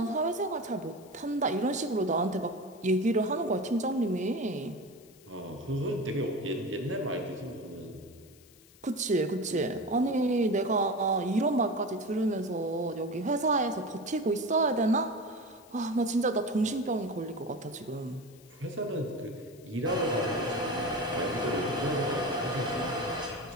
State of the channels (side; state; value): left; noise; hiss, 26 dB below the sound